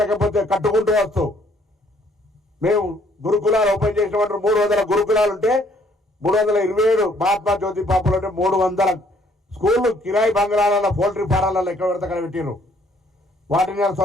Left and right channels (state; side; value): normal; both; correlation 0.64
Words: కట్టుకుంటూ వస్తూ, మేము గురుకులాలు ఓపెన్ చేసినటువంటి 300 గురుకులాలు ఉంటే 327 మహాత్మా జ్యోతి పాపలు అంటే 300 స్కూళ్ళు కిరాయి బంగ్లాలలో, పౌల్ట్రీ ఫారాలలో ఎక్కడ పడితే అక్కడ పెట్టిరు. వాటిని